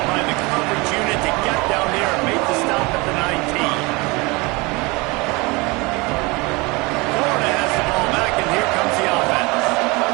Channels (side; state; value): left; quieter; 25.4 dB